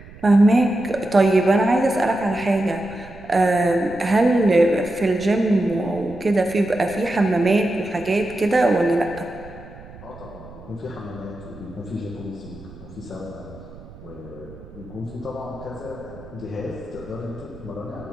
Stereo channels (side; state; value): right; noise; rumble, 18 dB below the sound